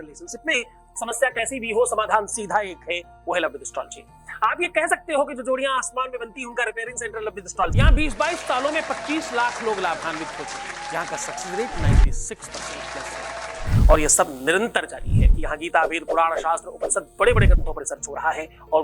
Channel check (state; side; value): identical; both; correlation 1.00